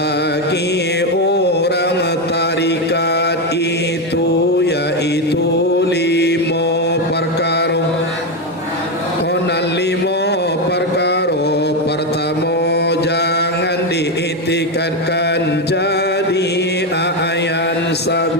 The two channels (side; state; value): both; normal; correlation 0.09